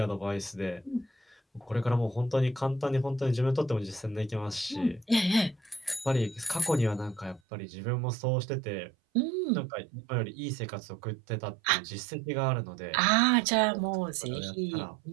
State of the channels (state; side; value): drops out; left; at 7.4 s